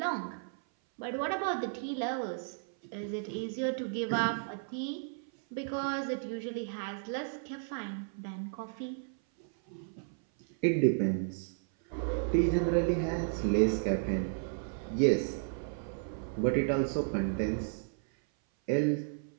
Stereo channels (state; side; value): silent; left; 55 dB below the other